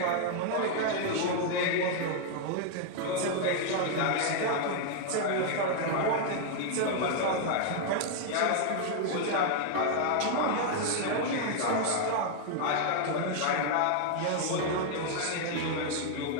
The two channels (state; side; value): different; both; correlation 0.00